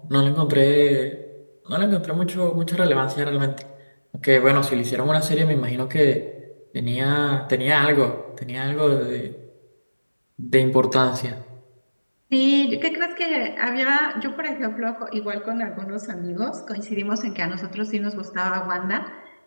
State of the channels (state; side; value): inverted; both; correlation -1.00